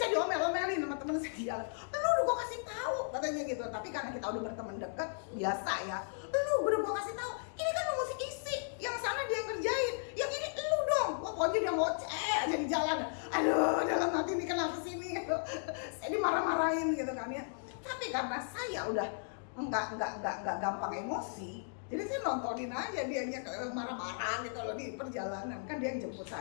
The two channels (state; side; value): silent; right; digital silence